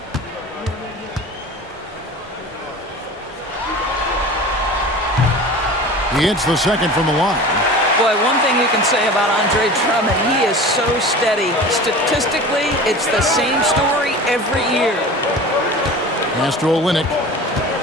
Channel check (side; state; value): both; normal; correlation 0.37